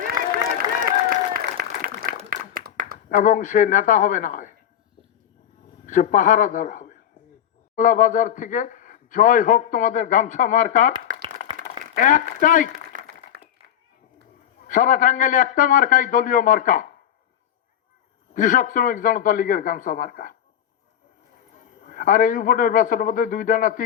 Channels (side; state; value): right; quieter; 9.8 dB